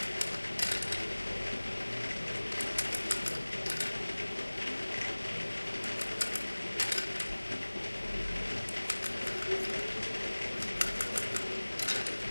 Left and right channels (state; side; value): inverted; both; correlation -1.00